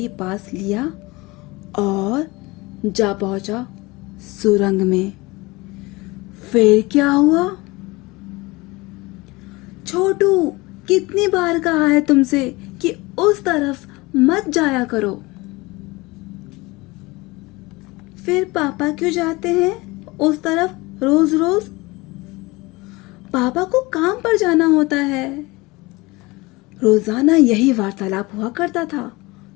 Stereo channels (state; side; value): quieter; right; 22.9 dB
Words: पास लिया और जा पहुंचा सुरंग में। फिर क्या हुआ? छोटू, कितनी बार कहा है तुमसे कि उस तरफ मत जाया करो। फिर पापा क्यों जाते हैं उस तरफ रोज रोज? पापा को काम पर जाना होता है। रोजाना यही वार्तालाप हुआ करता था